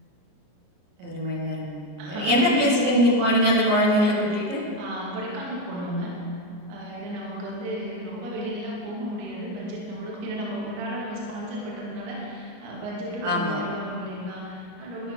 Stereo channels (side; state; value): left; late; 33 ms